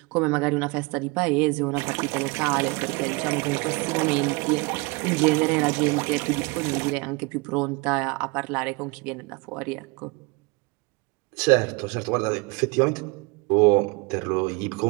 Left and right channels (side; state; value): left; quieter; 27.5 dB